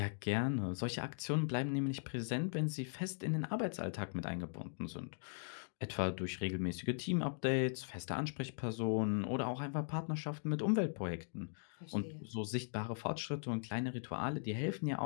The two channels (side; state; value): right; silent; digital silence